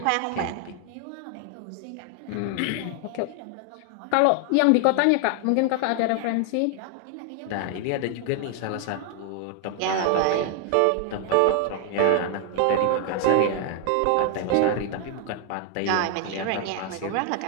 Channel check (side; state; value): both; different; correlation 0.00